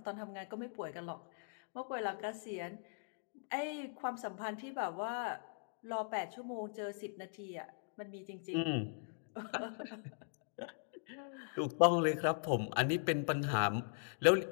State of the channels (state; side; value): silent; right; digital silence